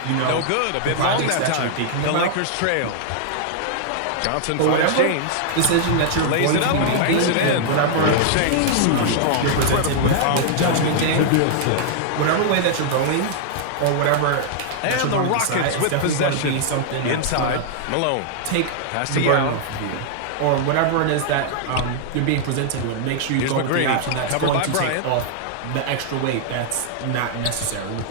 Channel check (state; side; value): different; both; correlation -0.01